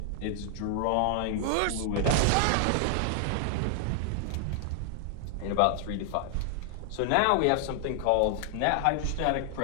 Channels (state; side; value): different; both; correlation 0.00